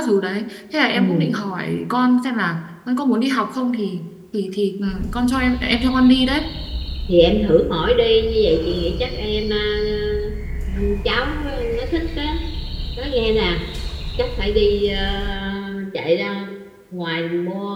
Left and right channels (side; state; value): both; identical; correlation 1.00